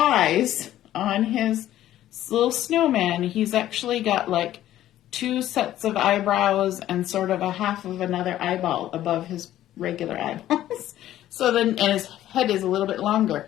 on his little snowman, he's actually got like 2 sets of eyebrows and sort of a half of another eyeball above his regular eyeballs. So then, and his head is a little bit longer.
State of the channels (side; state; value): right; quieter; 13.1 dB